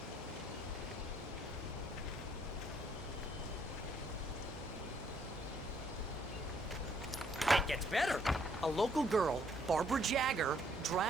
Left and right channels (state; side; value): normal; both; correlation 0.68